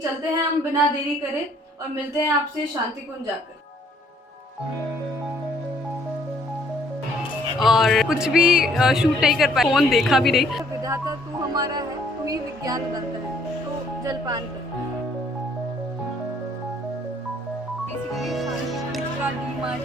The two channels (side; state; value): both; normal; correlation 0.63